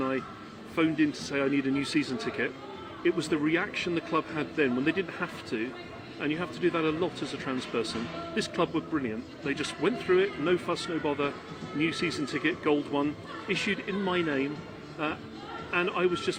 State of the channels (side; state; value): both; identical; correlation 1.00